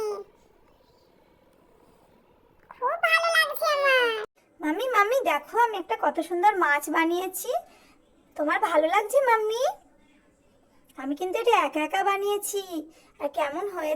দেখো আমি একটা কত সুন্দর মাছ বানিয়েছি। তোমার ভালো লাগছে মাম্মি? আমি কিন্তু এটা একা একা বানিয়েছি। আর কেমন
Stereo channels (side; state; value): both; identical; correlation 1.00